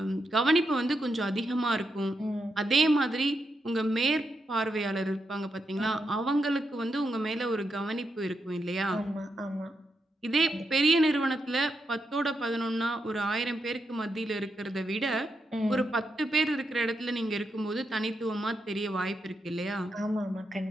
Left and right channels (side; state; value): both; normal; correlation 0.83